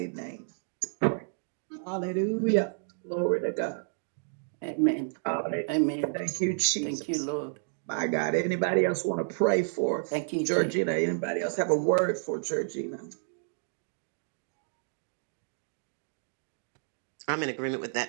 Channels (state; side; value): silent; left; digital silence